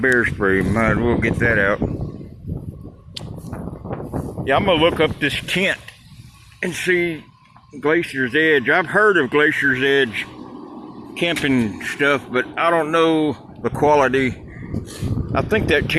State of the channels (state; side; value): identical; both; correlation 1.00